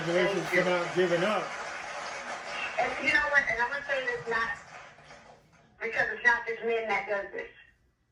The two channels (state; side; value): identical; both; correlation 1.00